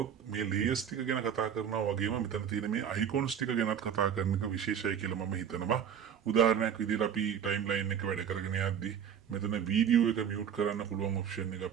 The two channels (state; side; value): quieter; left; 8.4 dB